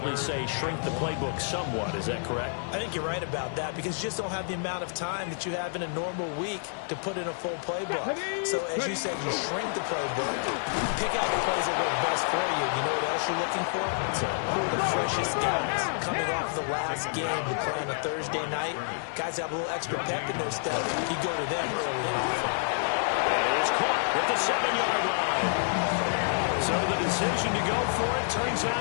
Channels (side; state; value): right; silent; 59 dB below the other